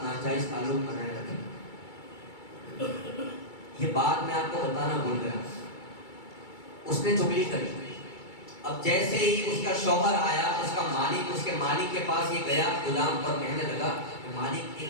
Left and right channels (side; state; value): right; late; 2.3 ms